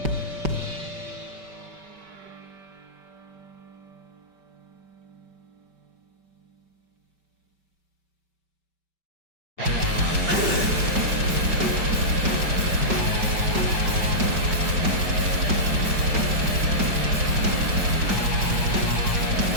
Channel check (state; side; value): late; left; 5.2 ms